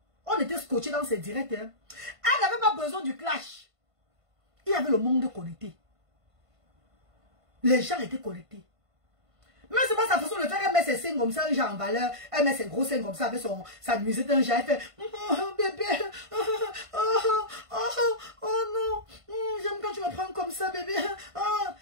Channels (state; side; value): late; left; 1.5 ms